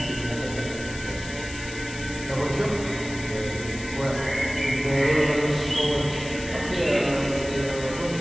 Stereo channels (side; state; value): left; noise; hiss, 13 dB below the sound